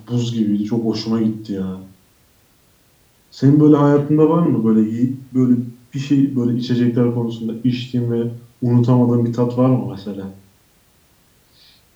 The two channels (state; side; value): identical; both; correlation 1.00